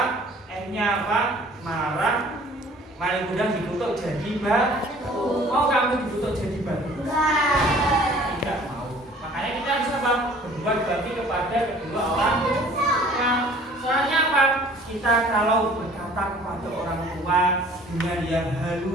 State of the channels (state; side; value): normal; both; correlation 0.52